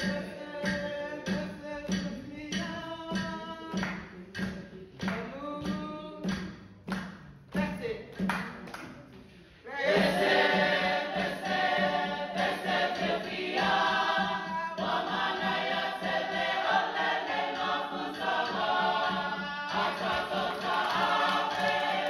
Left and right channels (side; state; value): both; identical; correlation 1.00